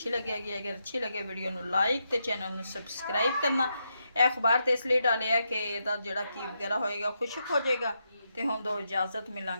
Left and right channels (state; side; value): inverted; both; correlation -0.83